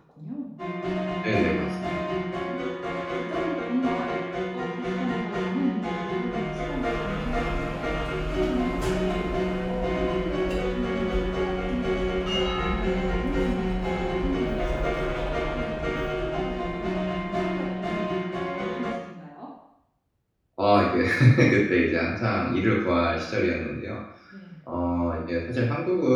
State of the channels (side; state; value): both; identical; correlation 1.00